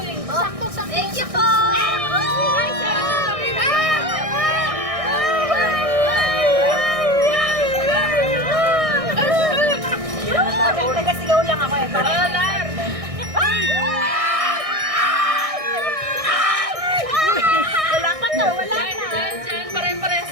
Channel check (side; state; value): left; late; 1.6 ms